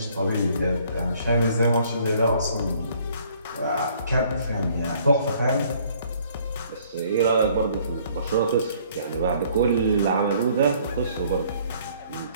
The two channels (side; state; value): both; inverted; correlation -0.60